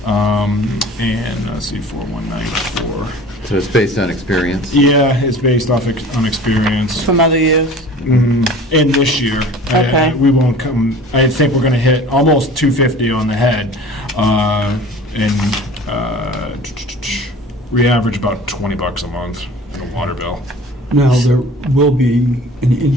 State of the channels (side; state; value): both; normal; correlation 0.43